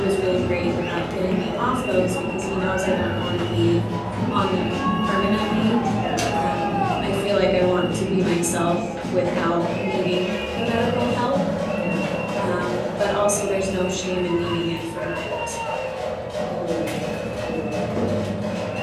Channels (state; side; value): identical; both; correlation 1.00